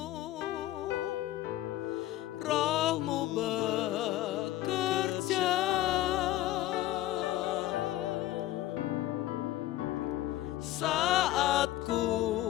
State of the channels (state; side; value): quieter; right; 15.0 dB